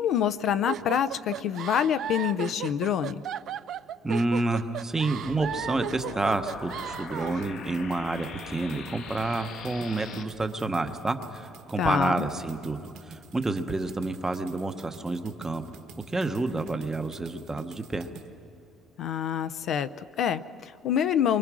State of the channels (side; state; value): both; normal; correlation 0.67